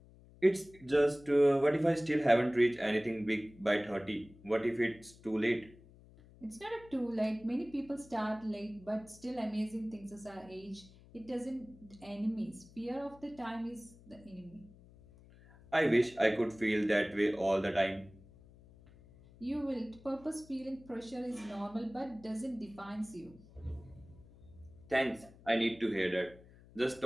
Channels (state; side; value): noise; left; hum, 23 dB below the sound